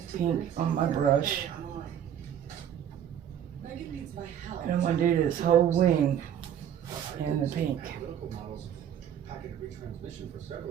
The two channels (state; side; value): quieter; left; 9.7 dB